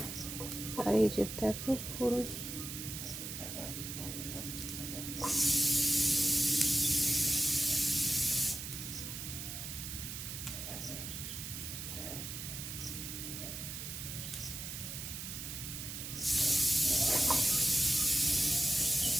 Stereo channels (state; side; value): noise; right; hiss, 7 dB below the sound